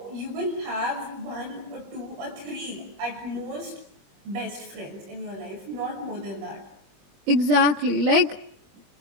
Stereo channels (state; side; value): late; left; 21 ms